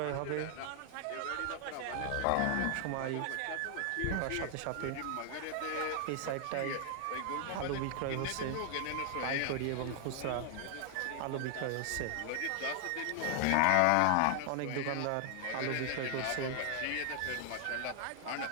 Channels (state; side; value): different; both; correlation 0.00